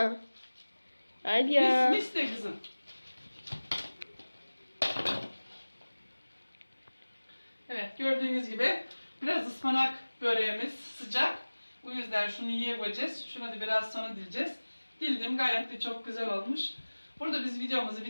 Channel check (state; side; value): inverted; both; correlation -1.00